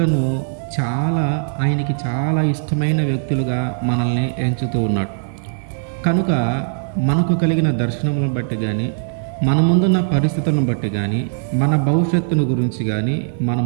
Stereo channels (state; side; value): silent; left; digital silence